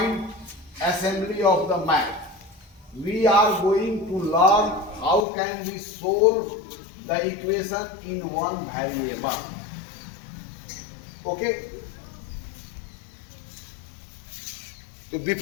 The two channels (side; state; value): right; drops out; at 5.2 s